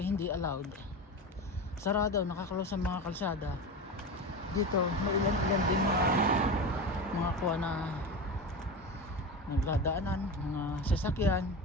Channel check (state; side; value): normal; both; correlation 0.24